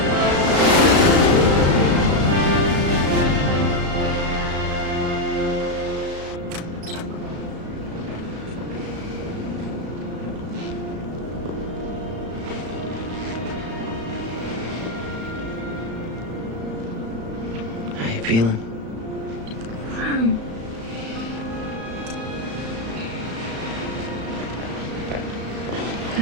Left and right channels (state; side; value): late; left; 35 ms